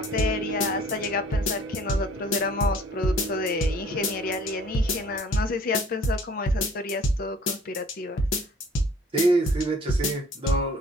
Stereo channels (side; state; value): both; normal; correlation 0.53